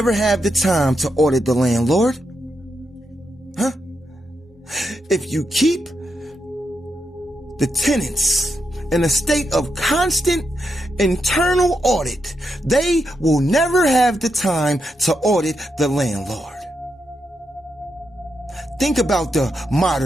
have the time to audit the landlord. Huh? If you keep the tenants in a state of constant internal audit, they will never have the time to audit the landlord. Think about the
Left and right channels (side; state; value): both; normal; correlation 0.84